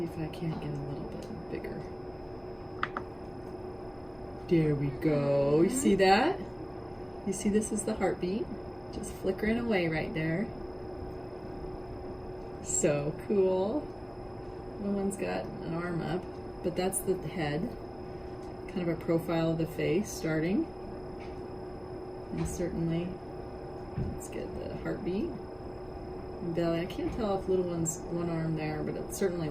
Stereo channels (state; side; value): identical; both; correlation 1.00